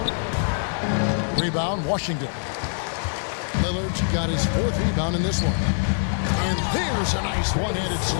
Rebound, Washington. Lillard's got his 4th rebound in this one. And there's a nice one-handed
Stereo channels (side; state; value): right; silent; digital silence